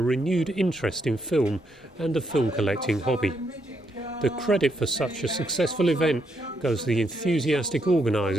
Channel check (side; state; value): both; normal; correlation 0.77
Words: renewed interest in film and the film collecting hobby. The credit for such a successful event goes to the enthusiastic